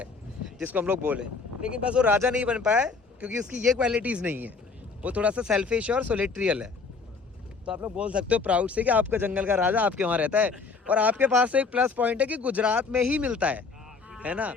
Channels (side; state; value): right; quieter; 4.6 dB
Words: जिसको हम लोग बोले, लेकिन बस वो राजा नहीं बन पाया क्योंकि उसकी ये क्वालिटीज़ नहीं है, वो थोड़ा सा सेल्फिश और सोलेट्रियल है। तो आप लोग बोल सकते हो प्राउड से कि आपका जंगल का राजा आपके वहाँ रहता है। और आपके पास एक प्लस पॉइंट है कि गुजरात में ही मिलता है ना,